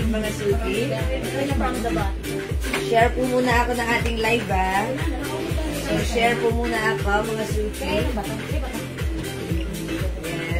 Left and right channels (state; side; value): identical; both; correlation 1.00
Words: mga Suki. Share po muna ako ng ating live, ha? So, share po muna ako, mga Suki.